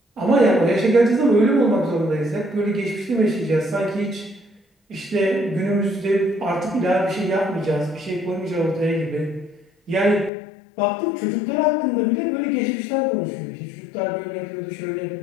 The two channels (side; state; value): right; drops out; at 10.3 s